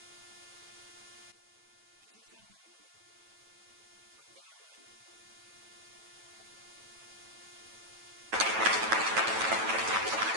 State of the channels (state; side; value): late; left; 9.1 ms